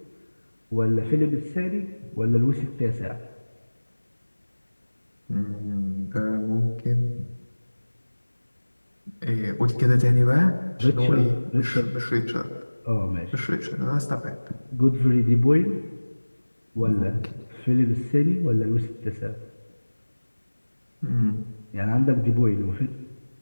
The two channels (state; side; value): inverted; both; correlation -1.00